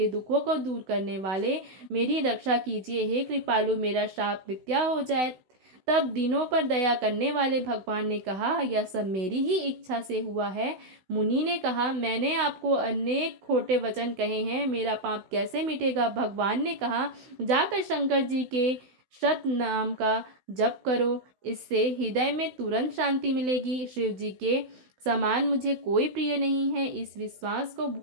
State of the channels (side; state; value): left; late; 16 ms